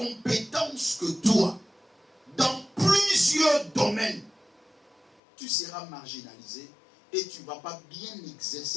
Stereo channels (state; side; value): drops out; right; at 5.2 s